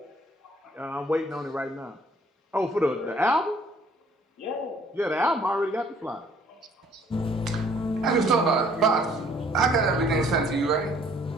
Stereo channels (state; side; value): normal; both; correlation 0.59